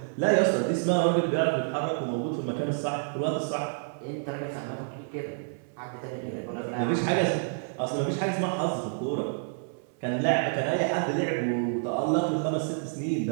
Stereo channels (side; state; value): left; silent; 59 dB below the other